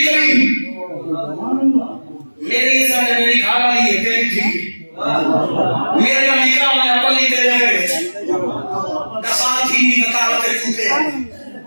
کریم میری عزت ہے میری گھر والی ہے تیری ٹھیک ہے میرا نکاح میں اپنی تیرے گئے دسات ہی نکالتے چوکے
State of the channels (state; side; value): inverted; both; correlation -1.00